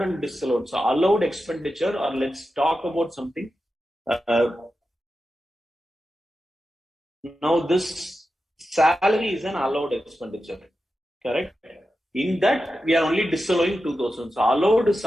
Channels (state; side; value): normal; both; correlation 0.91